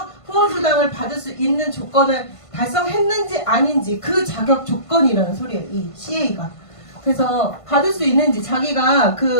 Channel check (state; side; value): late; right; 1.5 ms